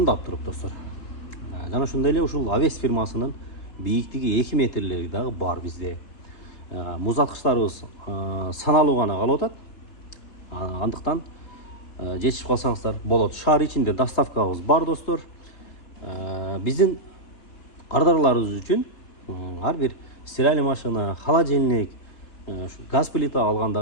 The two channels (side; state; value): right; late; 3.6 ms